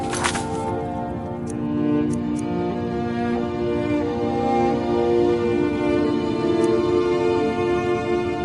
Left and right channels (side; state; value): both; identical; correlation 1.00